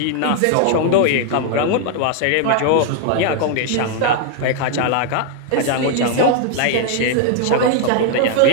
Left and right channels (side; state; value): both; different; correlation 0.00